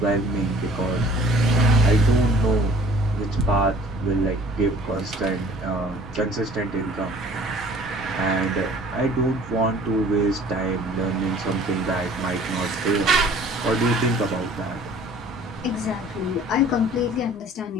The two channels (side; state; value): both; normal; correlation 0.51